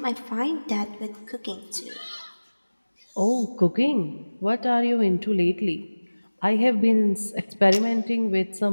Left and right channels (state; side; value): inverted; both; correlation -1.00